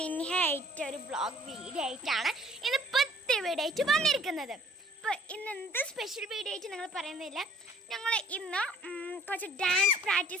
ആയിട്ട് ഒരു വ്ളോഗ് വീഡിയോ ആയിട്ടാണ് ഇന്ന് പുതിയ വീഡിയോ ആയിട്ട് വന്നിരിക്കുന്നത്. അപ്പോൾ ഇന്ന് എന്ത് സ്പെഷ്യൽ വീഡിയോ ആയിട്ട് നിങ്ങൾ പറയുന്നില്ല, ഞങ്ങൾ ഇന്ന് കുറച്ച് ഡാൻസ്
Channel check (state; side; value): normal; both; correlation 0.57